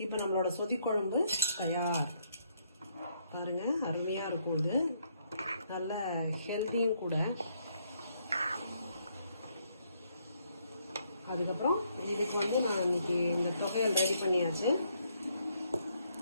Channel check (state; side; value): inverted; both; correlation -0.72